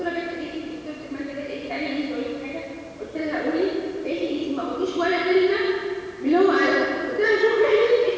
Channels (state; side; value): identical; both; correlation 1.00